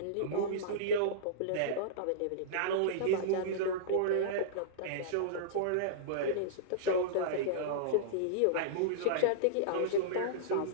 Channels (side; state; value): both; different; correlation -0.03